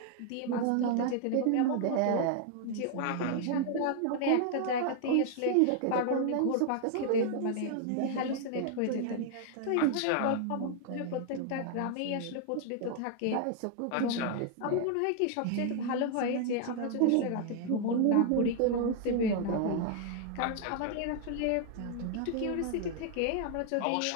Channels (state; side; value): different; both; correlation 0.00